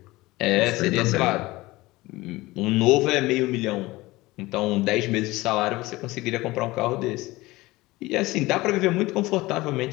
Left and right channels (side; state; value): right; quieter; 19.9 dB